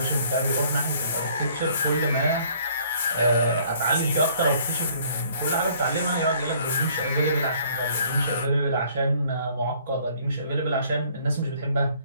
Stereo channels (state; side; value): inverted; both; correlation -0.59